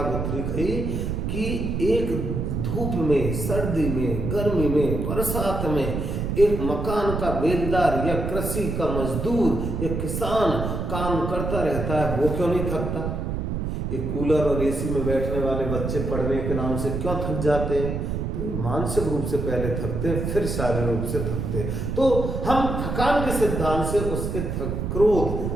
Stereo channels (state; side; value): noise; right; rumble, 2 dB below the sound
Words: गुथरी कही कि एक धूप में, सर्दी में, गर्मी में, बरसात में एक मकान का बेलदार या कृषि का मजदूर या किसान काम करता रहता है, वो क्यों नहीं थकता? ये कूलर और एसी में बैठने वाले बच्चे पढ़ने के नाम से क्यों थक जाते हैं? तो मानसिक रूप से पहले थकते हैं, फिर शारीरिक रूप से थकते हैं। तो हम थकान के सिद्धांत से उसके